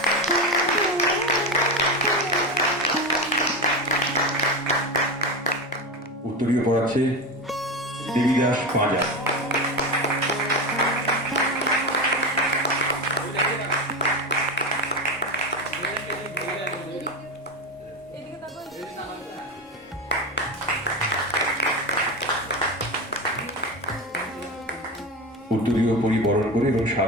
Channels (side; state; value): both; normal; correlation 0.19